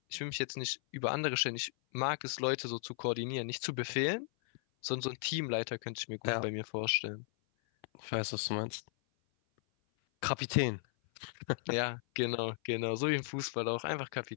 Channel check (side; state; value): right; silent; 54 dB below the other